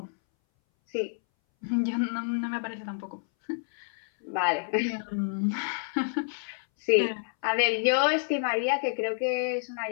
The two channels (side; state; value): right; silent; 59 dB below the other